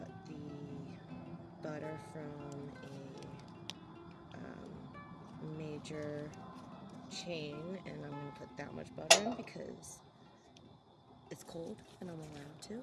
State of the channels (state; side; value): identical; both; correlation 1.00